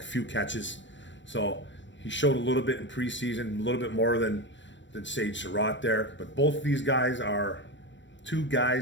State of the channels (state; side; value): late; right; 0.54 ms